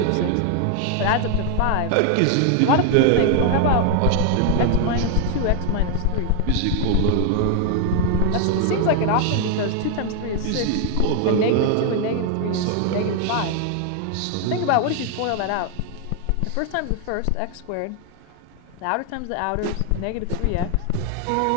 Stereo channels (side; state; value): both; different; correlation 0.00